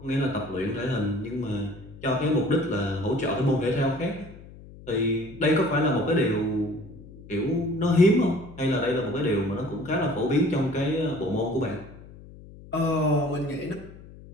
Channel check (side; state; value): left; noise; hum, 18 dB below the sound